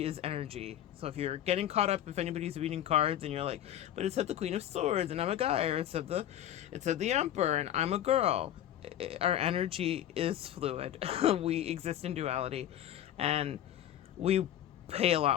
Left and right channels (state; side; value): quieter; right; 11.6 dB